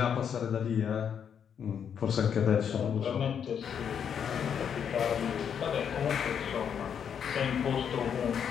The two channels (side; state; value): right; quieter; 7.9 dB